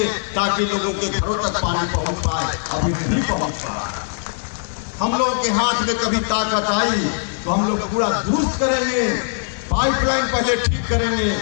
ताकि लोगों के घरों तक पानी पहुंच पाए। अभी नहीं पहुंच पा रहा। हम लोगों के हाथ में कभी ताकत आई तो हम लोग पूरा दुरुस्त करेंगे, पाइपलाइन पहले ठीक करेंगे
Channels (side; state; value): right; silent; digital silence